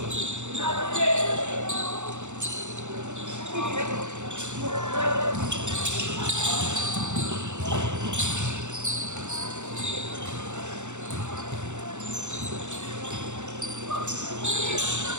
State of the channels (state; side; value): late; left; 0.84 ms